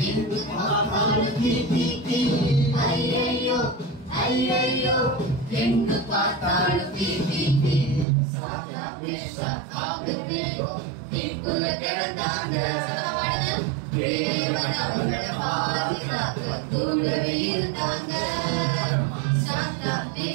எங்கு பார்த்தாலும் தீ தீ தீ. ஐயையோ ஐயையோ எங்கு பார்த்தாலும் தீ தீ தீ. சாத்ராக் மேஷாக் ஆபேத்நேகோ தீக்குள்ள கிடந்தாங்க. தேவன் அவர்களை பாதுகாக்க கூடவே இருந்தாங்க. சாத்ராக்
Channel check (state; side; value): drops out; left; at 8.1 s